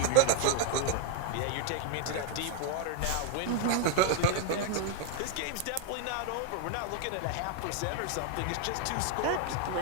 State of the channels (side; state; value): both; different; correlation 0.00